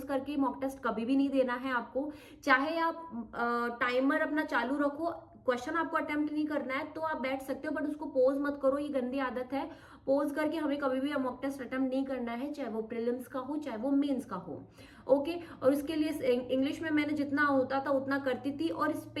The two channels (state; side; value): identical; both; correlation 1.00